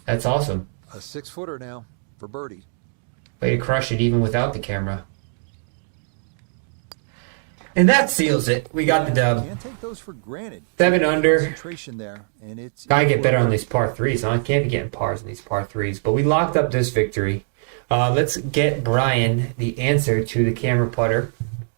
That's awesome. a 6-footer now for birdie. Way to crush it even without the camera. And that seals it. We got the dub. Can't take those for granted. 7 under. Concentration there, and it's Gotta get better on these par 3s. Huh? I can't be getting pars in these par 3s. But we locked up this victory. Let's get Brian the answer to the camera putter.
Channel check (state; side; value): silent; left; digital silence